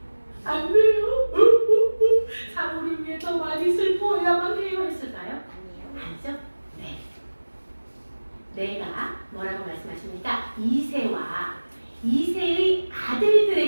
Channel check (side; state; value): both; inverted; correlation -1.00